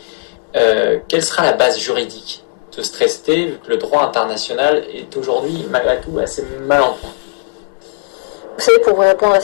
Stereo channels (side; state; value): right; silent; 69 dB below the other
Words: Quelle sera la base juridique de ce traité, vu que le droit international est aujourd'hui, malgré tout, assez mal en point? Vous savez, pour vous répondre à